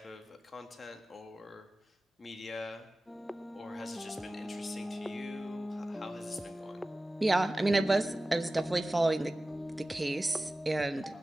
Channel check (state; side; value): normal; both; correlation 0.96